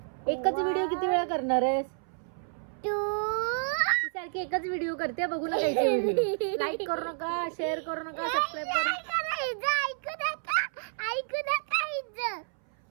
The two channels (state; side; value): silent; left; 58 dB below the other